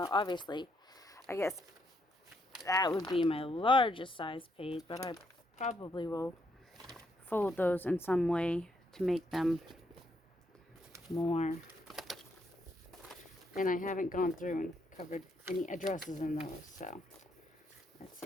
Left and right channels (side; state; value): both; normal; correlation 0.75